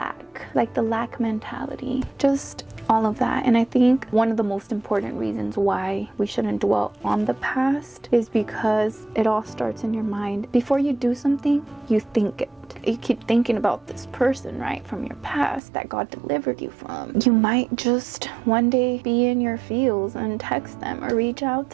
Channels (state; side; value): drops out; left; at 15.6 s